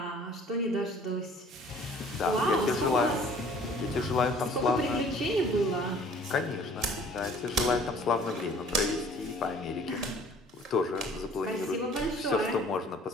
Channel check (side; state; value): both; normal; correlation 0.52